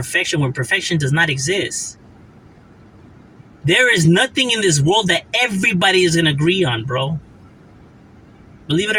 when perfection does not exist. There is nothing in this world that everybody is going to agree on, bro. Believe it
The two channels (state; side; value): identical; both; correlation 1.00